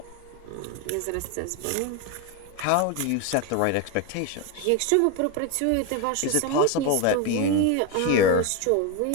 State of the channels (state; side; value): different; both; correlation 0.02